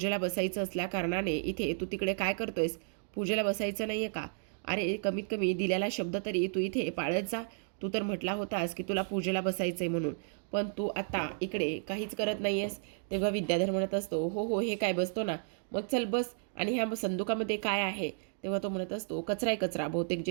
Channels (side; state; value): left; silent; digital silence